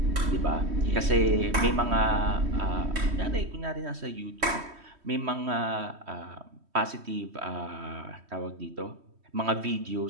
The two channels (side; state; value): left; late; 3.1 ms